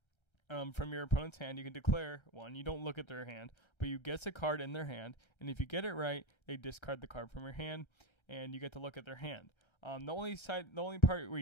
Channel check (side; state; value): right; late; 1.3 ms